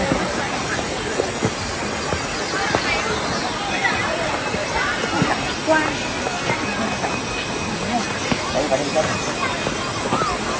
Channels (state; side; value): identical; both; correlation 1.00